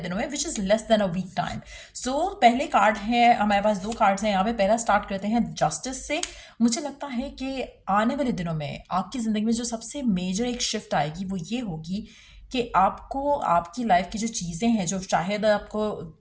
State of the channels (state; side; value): identical; both; correlation 1.00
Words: में, which is less than a week time. So पहले कार्ड है, हमारे पास दो कार्ड्स हैं यहाँ पे। पहला स्टार्ट करते हैं जस्टिस से। मुझे लगता है कि आने वाले दिनों में आपकी ज़िंदगी में जो सबसे मेजर एक शिफ्ट आएगी वो ये होगी कि आपको आपकी लाइफ की जो चीज़ें हैं, जो शायद आपको